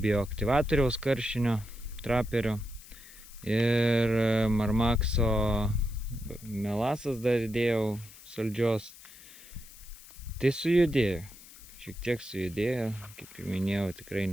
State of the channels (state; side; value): noise; left; hiss, 19 dB below the sound